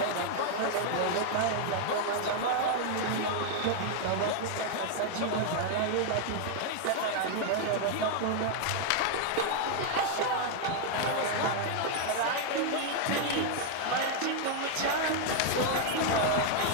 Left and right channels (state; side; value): different; both; correlation 0.00